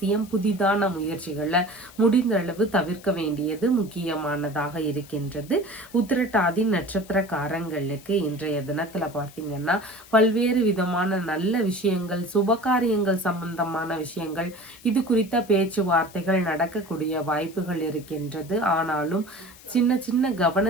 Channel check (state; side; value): noise; left; hiss, 22 dB below the sound